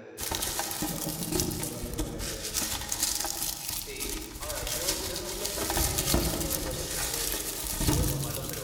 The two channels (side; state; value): both; identical; correlation 1.00